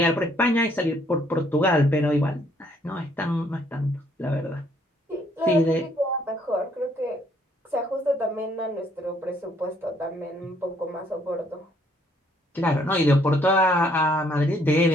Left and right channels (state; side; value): normal; both; correlation 0.66